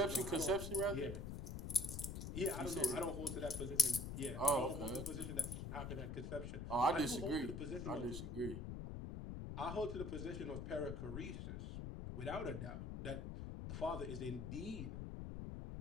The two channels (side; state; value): left; noise; rumble, 5 dB below the sound